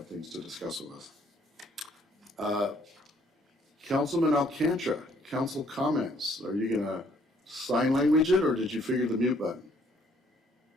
things to discuss with us. Councilman Alcantara, council comments. Are you going to sign language it, or did you figure the mute button?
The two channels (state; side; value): normal; both; correlation 0.65